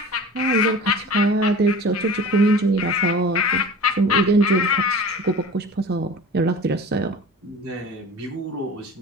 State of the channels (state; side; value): normal; both; correlation 0.38